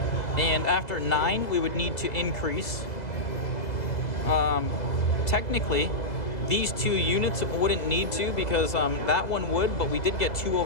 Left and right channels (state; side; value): late; right; 2.0 ms